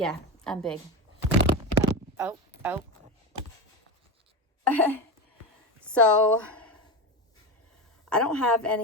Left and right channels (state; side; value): normal; both; correlation 0.20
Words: I'm big. Oh. So, I don't have